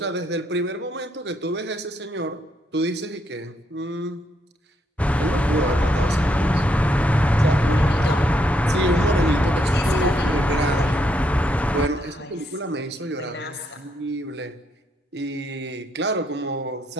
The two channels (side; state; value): both; normal; correlation 0.75